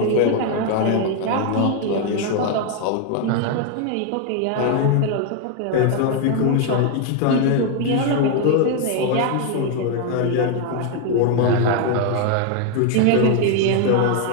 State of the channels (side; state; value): both; different; correlation 0.01